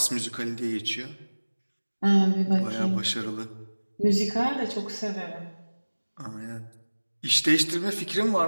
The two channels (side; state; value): both; inverted; correlation -1.00